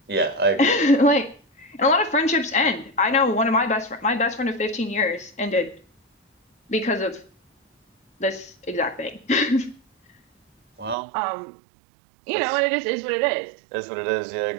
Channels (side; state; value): left; drops out; at 11.0 s